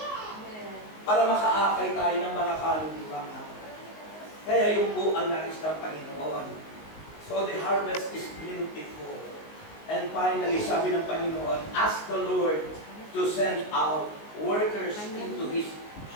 para makaakay tayo ng mga kaluluwa. Kaya yun po ang nais ng Panginoon. So the harvest is plentiful. And finally, sabi ng Panginoon, ask the Lord to send out workers into His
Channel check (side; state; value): right; late; 19 ms